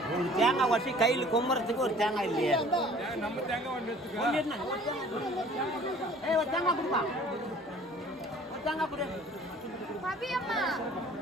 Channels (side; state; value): both; normal; correlation 0.51